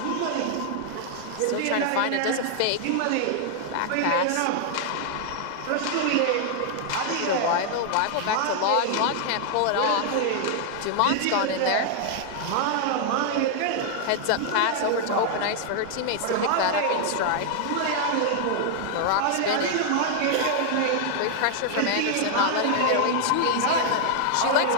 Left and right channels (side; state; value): both; different; correlation 0.00